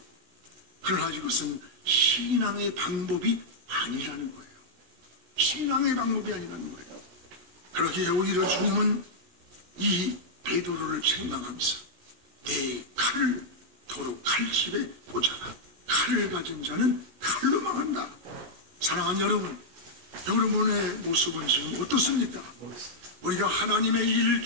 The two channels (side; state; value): left; late; 16 ms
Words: 그러나 이것은 신앙의 방법이 아니라는 거예요. 신앙의 방법이 아니라는 거예요. 그러기에 오히려 주님은 이 베드로를 책망하면서 내 칼을 도로 칼집에 꽂아라. 칼을 가진 자는 칼로 망한다. 사랑하는 여러분, 여러분의 모습은 지금 어떻습니까? 우리가 하나님의 일